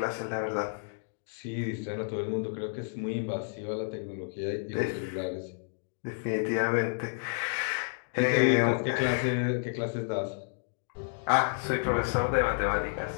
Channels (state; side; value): silent; right; digital silence